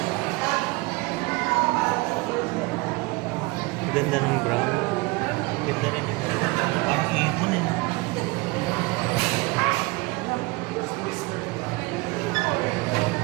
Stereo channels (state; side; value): quieter; left; 24.4 dB